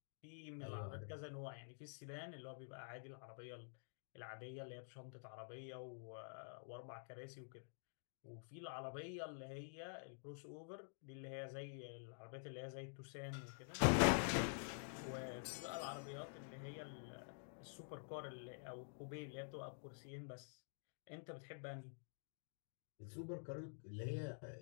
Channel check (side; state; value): right; silent; digital silence